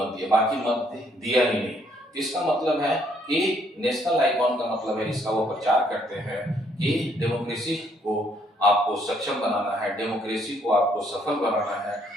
दिया, बाकी मत दिया ही नहीं। इसका मतलब है कि नेशनल आइकॉन का मतलब है, इसका वो प्रचार करते हैं कि डेमोक्रेसी को आपको सक्षम बनाना है, डेमोक्रेसी को आपको सफल बनाना है,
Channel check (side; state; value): both; normal; correlation 0.68